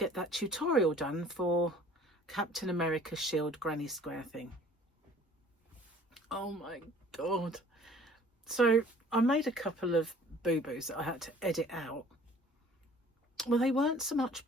that tutorial done for Captain America Shield Granny Square thing. Oh my God. So I made a couple of boo-boos that I had to edit out. Well, they weren't so much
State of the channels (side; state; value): both; normal; correlation 0.52